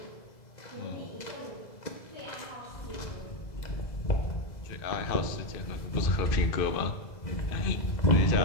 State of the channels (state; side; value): late; right; 2.0 ms